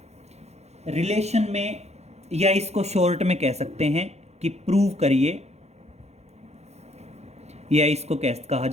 रिलेशन में, या इसको शॉर्ट में कह सकते हैं कि प्रूव करिए, या इसको कैसे कहा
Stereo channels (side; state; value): left; late; 0.31 ms